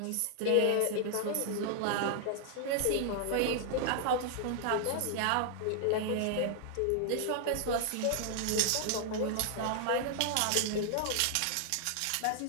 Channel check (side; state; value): both; different; correlation 0.00